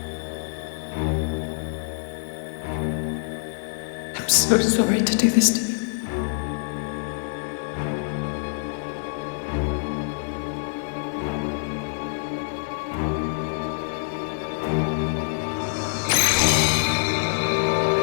I'm so sorry to do this to you.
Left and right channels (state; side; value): silent; right; digital silence